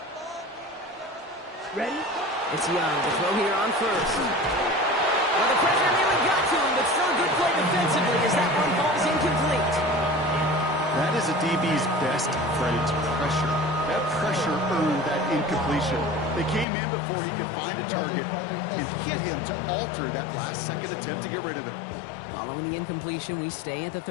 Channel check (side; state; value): right; drops out; at 16.7 s